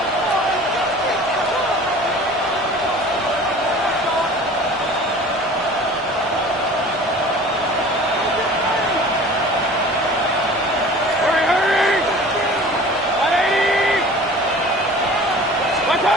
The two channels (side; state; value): both; normal; correlation 0.43